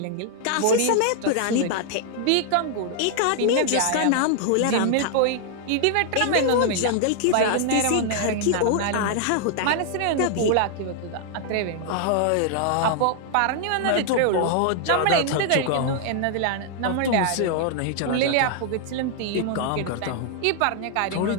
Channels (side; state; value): both; different; correlation 0.00